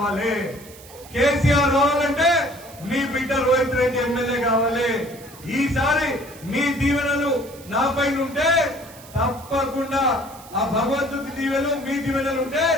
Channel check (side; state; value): right; noise; hiss, 20 dB below the sound